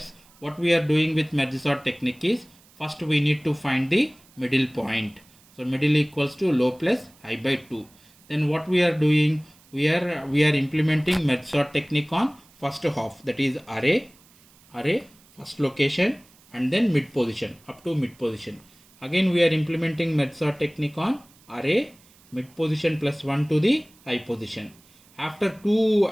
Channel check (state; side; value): noise; right; hiss, 28 dB below the sound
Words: What we are doing with merge sort technique is, first we need to find the middle point. So middle equals to low plus high by 2. Then what we are doing, we are implementing merge sort technique on first half, that is array, first location, and then mid position, up to mid position. Again we are implementing merge sort technique on array, mid position plus 1 to the high position. After